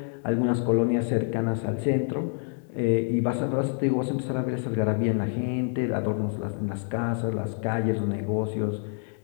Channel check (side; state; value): right; silent; 56 dB below the other